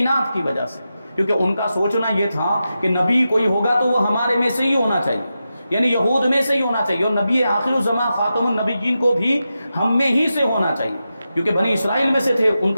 کی وجہ سے، کیونکہ ان کا سوچنا یہ تھا کہ نبی کوئی ہوگا تو وہ ہمارے میں سے ہی ہونا چاہیے، یعنی یہود میں سے ہی ہونا چاہیے، اور نبی آخر الزماں خاتم النبیین کو بھی ہم میں ہی سے ہونا چاہیے، کیونکہ بنی اسرائیل میں سے تھے۔ ان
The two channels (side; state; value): both; inverted; correlation -0.90